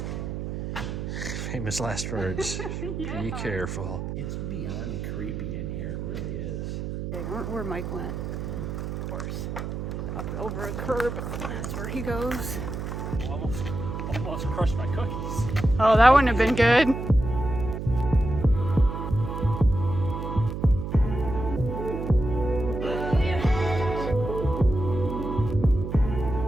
Famous last words. Yeah. Be careful. It's beyond creepy in here, it really is. Okay, where Mike went. Of course. Up over a curb. That's where he goes. Almost crushed my cookies. Oh, that wouldn't have been good.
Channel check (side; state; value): right; noise; hum, 5 dB below the sound